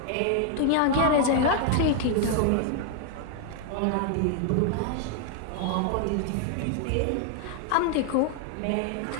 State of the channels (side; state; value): both; different; correlation 0.00